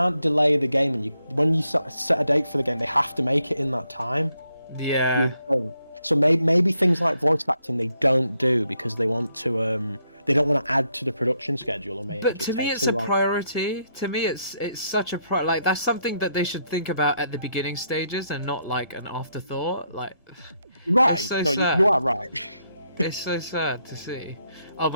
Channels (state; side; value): inverted; both; correlation -0.77